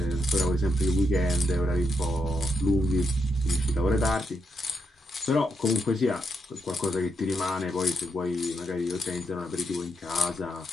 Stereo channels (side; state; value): both; normal; correlation 0.81